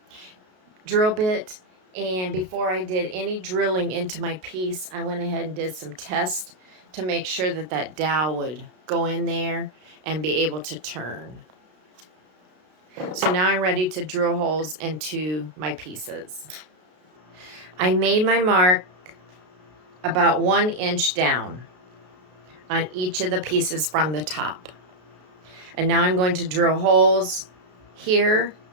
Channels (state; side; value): late; left; 32 ms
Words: bit. And before I did any drilling into my piece, I went ahead and did some tests to make sure that that dowel would go in there and be able to turn. So now I'm ready to drill holes into my pieces. I made my mark about 1 inch down on each of the pieces from the top. And now I'm going to drill holes here.